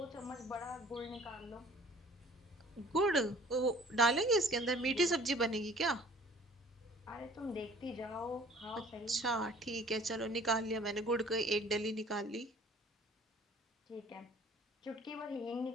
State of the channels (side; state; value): both; normal; correlation 0.51